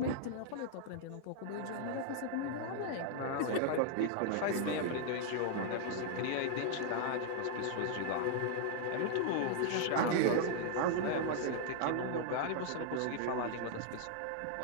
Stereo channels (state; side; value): different; both; correlation -0.01